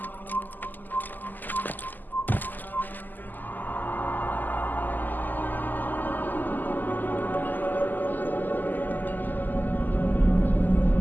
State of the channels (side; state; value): right; late; 0.086 ms